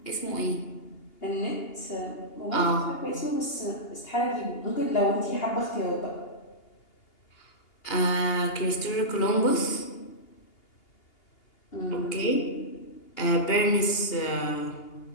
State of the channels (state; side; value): late; right; 2.8 ms